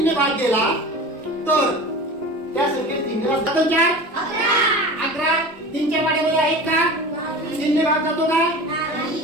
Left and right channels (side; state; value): both; normal; correlation 0.35